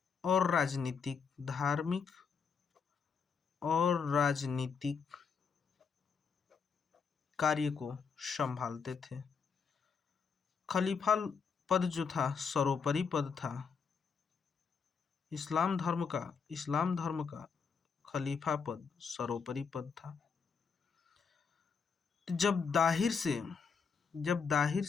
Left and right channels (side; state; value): right; quieter; 5.8 dB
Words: और राजनीतिक कार्य को संभालते थे। खलीफा पद जो था सर्वोपरि पद था। इस्लाम धर्म का खलीफा पद सर्वोपरि पद था। जब दाहिर